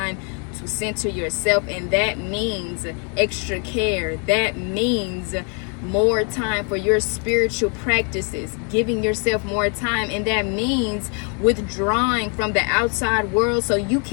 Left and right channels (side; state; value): right; quieter; 38.7 dB